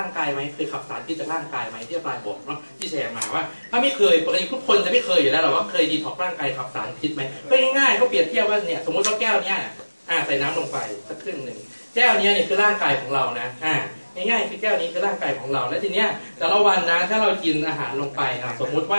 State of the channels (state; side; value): inverted; both; correlation -1.00